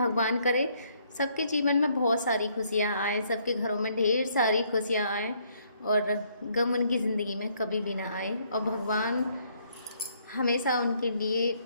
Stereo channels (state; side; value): inverted; both; correlation -0.68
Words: करे सबके जीवन में बहुत सारी खुशियाँ आए, सबके घरों में ढेर सारी खुशियाँ आए और गम उनकी ज़िंदगी में कभी भी ना आए। और भगवान हमेशा उनके लिए